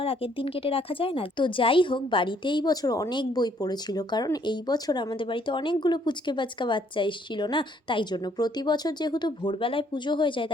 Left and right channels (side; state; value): both; normal; correlation 0.66